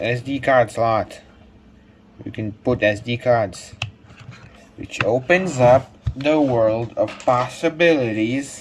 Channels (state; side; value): identical; both; correlation 1.00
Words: card slot. You can put SD cards, which opens up the world of